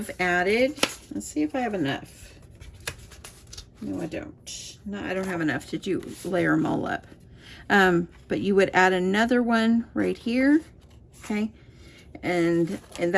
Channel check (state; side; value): identical; both; correlation 1.00